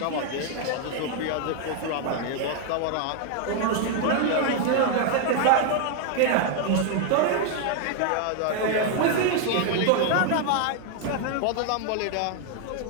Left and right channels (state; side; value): different; both; correlation 0.00